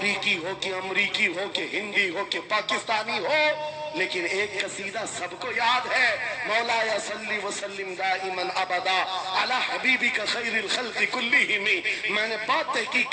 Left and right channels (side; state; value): both; identical; correlation 1.00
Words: ہو کہ امریکی ہو کہ ہندی ہو کہ پاکستانی ہو، لیکن ایک قصیدہ سب کو یاد ہے، مولاي صلی وسلم دائما ابدا علی حبیبک خیر الخلق کلہم۔ میں نے بات تحقیق